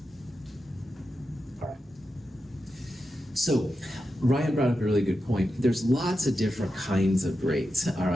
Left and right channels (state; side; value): normal; both; correlation 0.89